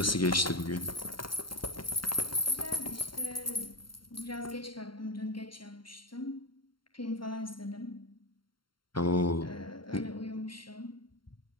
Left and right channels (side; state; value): right; late; 0.73 ms